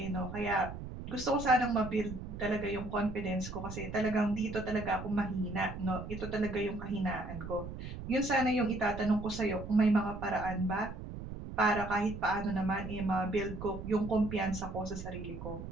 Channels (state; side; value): noise; right; rumble, 9 dB below the sound